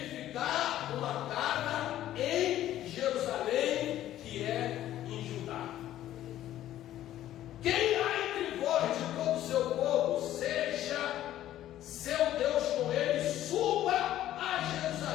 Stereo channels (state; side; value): quieter; right; 12.9 dB